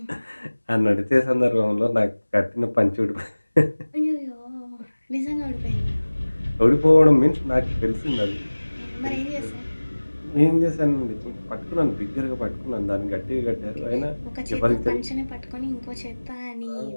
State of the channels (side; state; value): both; inverted; correlation -1.00